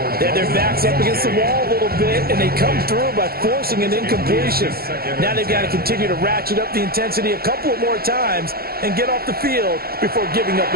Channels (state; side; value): late; left; 0.44 ms